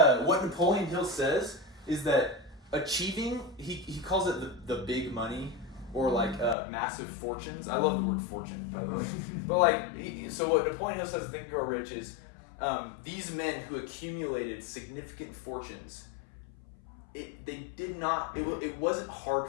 Napoleon Hill says is that achieving, he calls it the big money, or like massive fortunes. I love the word fortune, by the way. But so what Napoleon Hill says in Think and Grow Rich is these men who accumulated significant fortunes, it wasn't hard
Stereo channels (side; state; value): right; drops out; at 6.6 s